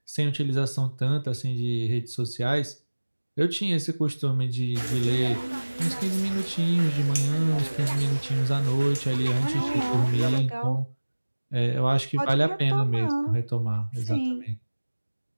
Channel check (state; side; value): inverted; both; correlation -1.00